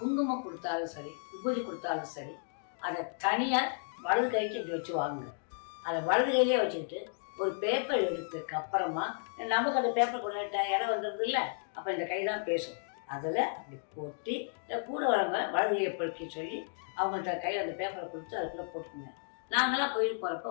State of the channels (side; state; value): right; silent; digital silence